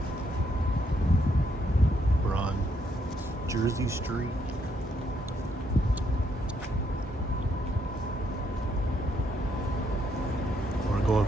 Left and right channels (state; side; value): normal; both; correlation 0.74